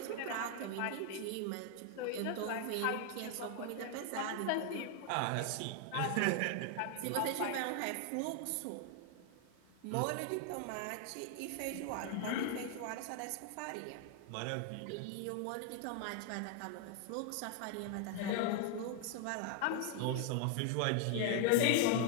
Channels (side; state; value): both; different; correlation 0.00